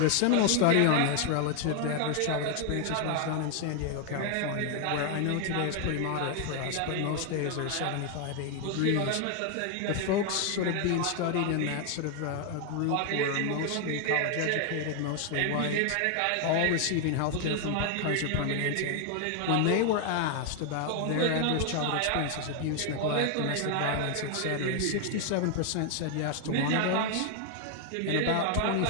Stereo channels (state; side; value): different; both; correlation 0.01